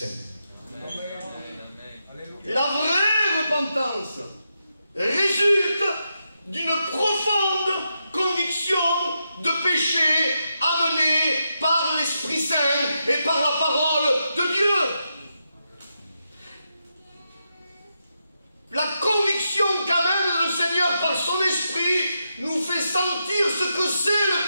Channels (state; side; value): inverted; both; correlation -0.85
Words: La vraie repentance résulte d'une profonde conviction de péché amenée par l'Esprit Saint et par la parole de Dieu. La conviction qu'amène le Seigneur par son Esprit nous fait sentir ce que c'est